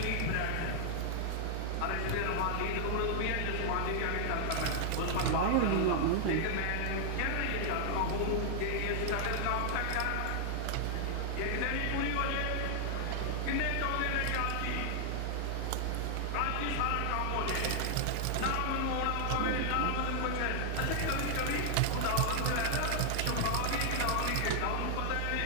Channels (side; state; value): both; different; correlation 0.00